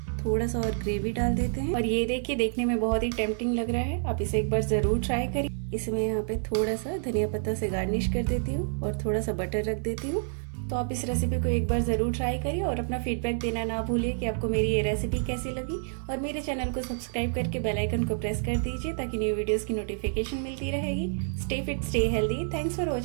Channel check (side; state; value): left; silent; 58 dB below the other